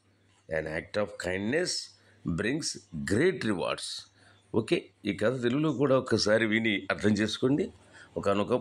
An act of kindness brings great rewards. Okay, ఈ కథ తెలుగులో కూడా ఒక్కసారి విని అర్థం చేసుకోండి.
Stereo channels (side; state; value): both; identical; correlation 1.00